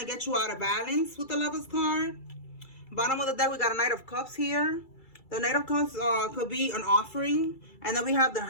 to get you out of balance with the Lovers card. Bottom of the deck, we got a Knight of Cups here. The Knight of Cups could be an offering. And then we have the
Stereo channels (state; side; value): late; right; 2.3 ms